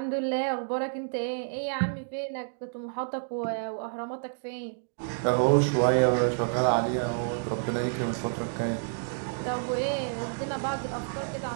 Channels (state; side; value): silent; left; digital silence